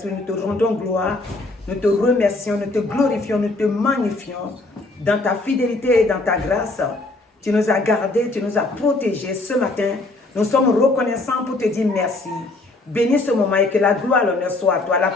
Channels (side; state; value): right; quieter; 3.0 dB